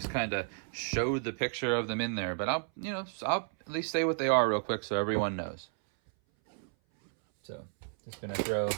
kind of showed the picture of them in there, but I'll at least say what they are real quick so everyone knows. So just gonna throw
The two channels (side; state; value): left; silent; 56 dB below the other